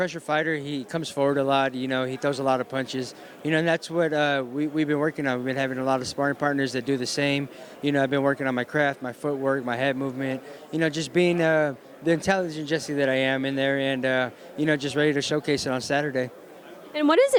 fighter. He comes forward a lot. He throws a lot of punches. And that's what we've been working on. We've been having a lot of sparring partners that do the same. I've been working on my craft, my footwork, my head movement. Just being the intelligent Jessie that I am in there, and just ready to showcase it on Saturday. And what does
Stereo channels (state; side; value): identical; both; correlation 1.00